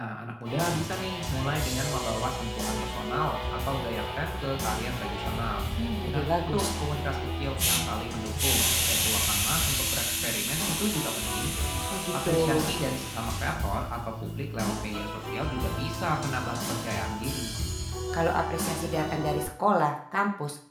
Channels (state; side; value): identical; both; correlation 1.00